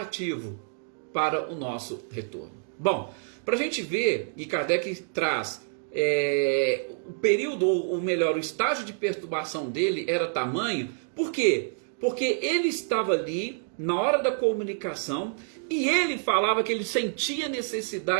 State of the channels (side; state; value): left; silent; digital silence